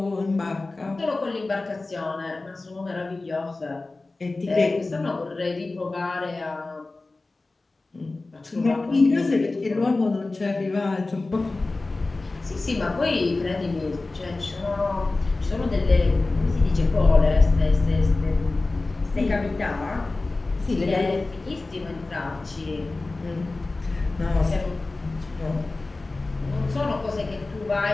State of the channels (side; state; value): right; quieter; 3.3 dB